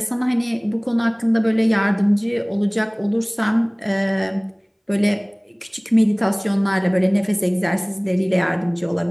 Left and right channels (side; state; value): both; identical; correlation 1.00